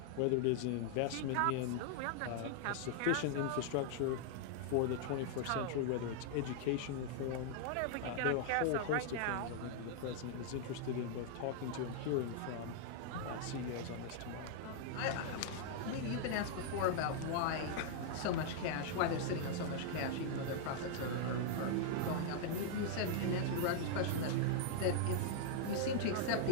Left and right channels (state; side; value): different; both; correlation -0.01